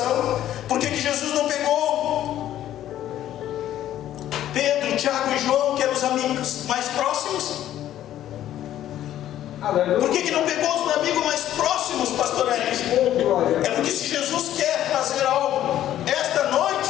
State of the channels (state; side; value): quieter; right; 12.2 dB